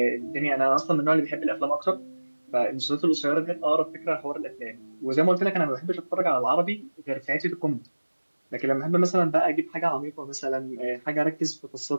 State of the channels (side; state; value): both; inverted; correlation -1.00